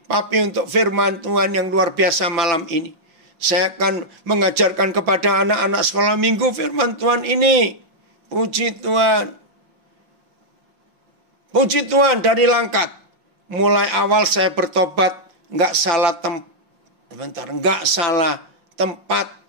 Papi untuk firman Tuhan yang luar biasa malam ini. Saya akan mengajarkan kepada anak-anak sekolah minggu firman Tuhan ini. Puji Tuhan. Puji Tuhan dari Langkat. Mulai awal saya bertobat. Nggak salah tempat.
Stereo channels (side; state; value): left; late; 5.6 ms